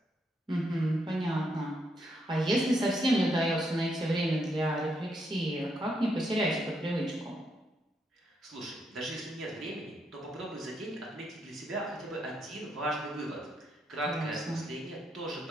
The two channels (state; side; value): normal; both; correlation 0.78